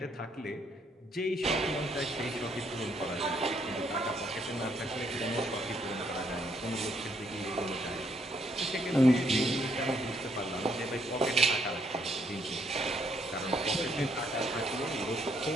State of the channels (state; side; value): normal; both; correlation 0.71